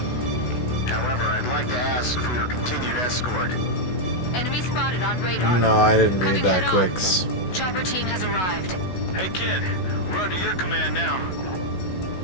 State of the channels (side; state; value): right; late; 16 ms